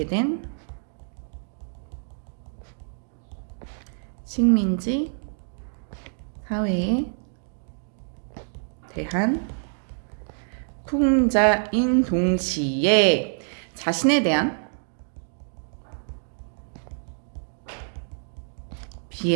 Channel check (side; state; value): left; silent; digital silence